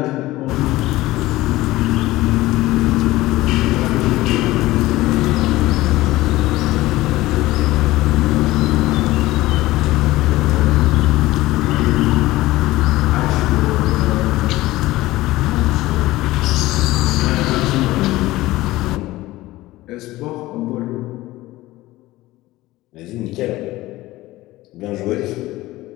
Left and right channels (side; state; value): right; quieter; 17.7 dB